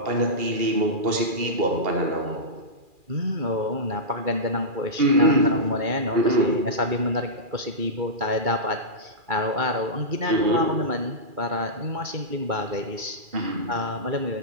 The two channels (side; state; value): left; late; 2.4 ms